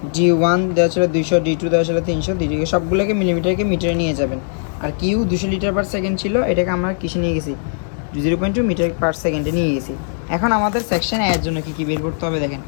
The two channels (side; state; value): right; silent; digital silence